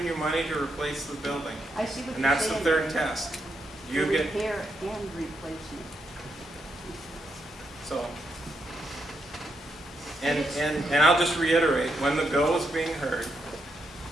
you money to replace the building. I see what And you're that's the saying. third test. You The get, repair and replacement. so. And I'll just reiterate, when the bill was being heard,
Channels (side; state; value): both; normal; correlation 0.81